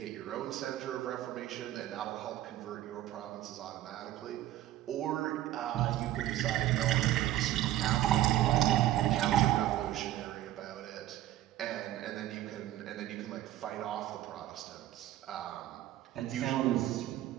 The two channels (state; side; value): quieter; left; 13.9 dB